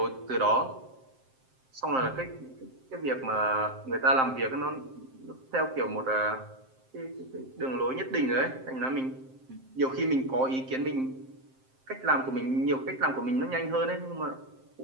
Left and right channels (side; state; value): left; late; 7.6 ms